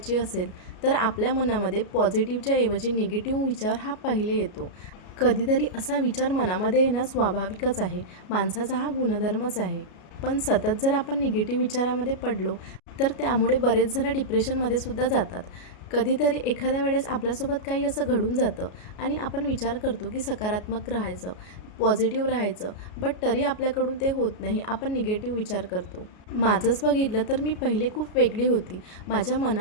असेल तर आपल्या मनामध्ये पॉझिटिव्हच्या ऐवजी निगेटिव्ह विचार हा पहिले येतो. कधीतरी असा विचार मनामध्ये येणं स्वाभाविकच आहे, माणसाचा हा गुणधर्मच आहे. पण सतत जर आपण निगेटिव्ह विचारामध्ये पडलो तर त्यामुळे बरेच जण डिप्रेशनमध्ये सुद्धा जातात. कधीतरी एखाद्या वेळेस आपल्यासोबत काही असं घडून जातं आणि आपण विचार करतो की सकारात्मक राहायचं, पॉझिटिव्ह राहायचं, बट तरी आपल्याकडून ते होत नाही. आपण निगेटिव्ह विचार करतो. माझंच बघितलं तर मी पहिले खूप वेगळी होती. माझ्या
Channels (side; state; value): right; late; 33 ms